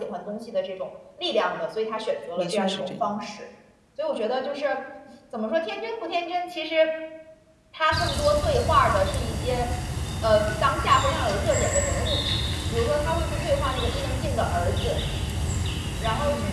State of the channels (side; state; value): both; identical; correlation 1.00